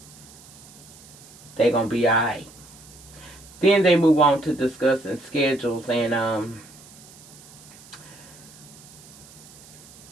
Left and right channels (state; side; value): noise; right; hiss, 21 dB below the sound